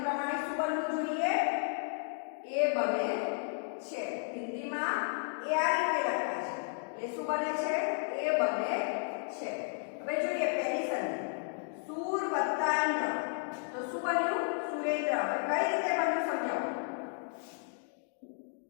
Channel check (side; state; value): right; silent; 55 dB below the other